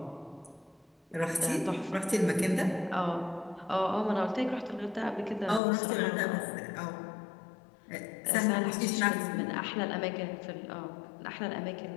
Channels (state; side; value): drops out; right; at 5.6 s